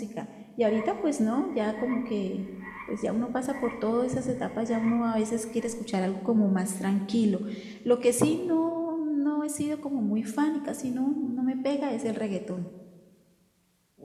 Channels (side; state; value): both; identical; correlation 1.00